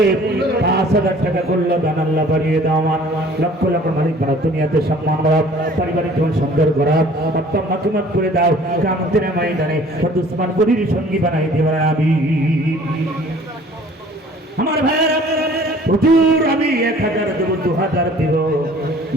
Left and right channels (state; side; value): normal; both; correlation 0.52